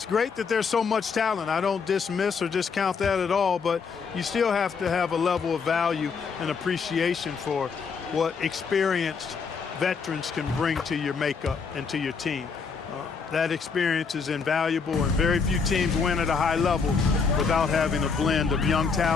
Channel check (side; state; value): right; quieter; 5.4 dB